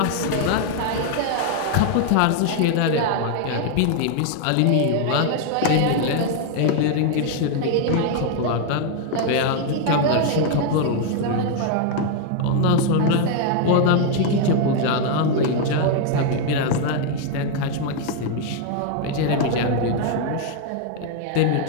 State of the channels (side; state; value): both; different; correlation 0.00